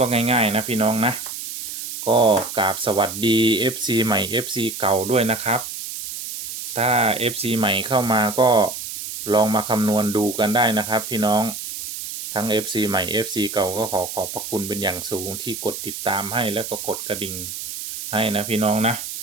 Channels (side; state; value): right; noise; hiss, 8 dB below the sound